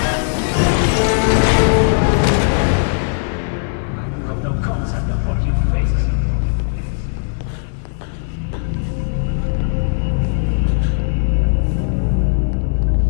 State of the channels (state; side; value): silent; right; digital silence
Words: No concept of what you face.